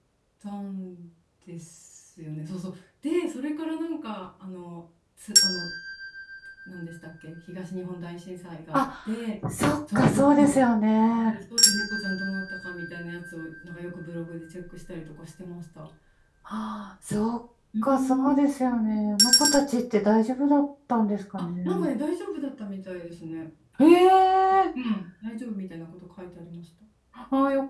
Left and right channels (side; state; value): both; identical; correlation 1.00